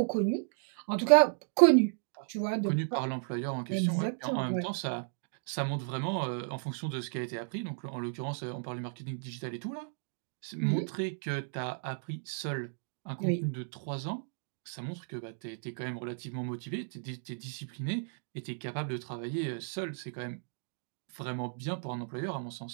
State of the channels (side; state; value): left; silent; digital silence